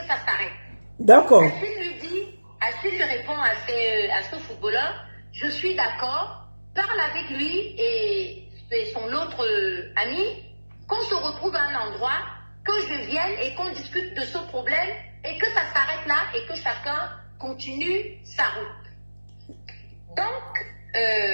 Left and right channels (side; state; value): both; inverted; correlation -1.00